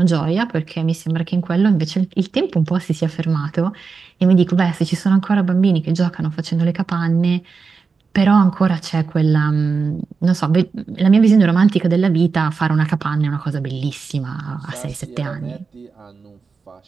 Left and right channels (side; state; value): left; quieter; 4.9 dB